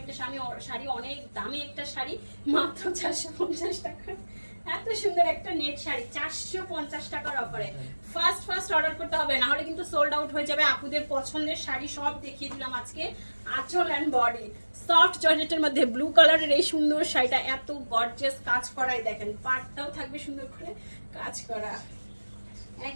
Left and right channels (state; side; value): inverted; both; correlation -1.00